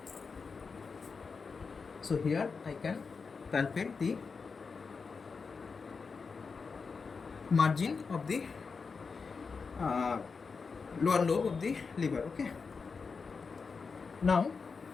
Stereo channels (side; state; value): right; quieter; 5.0 dB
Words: So here I can palpate the margin of the lower lobe of the liver. Okay. Now,